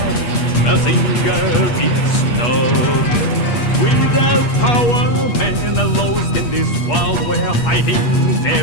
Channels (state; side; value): late; right; 8.4 ms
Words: Mazinger is not. Without power, men are lost in this world where fighting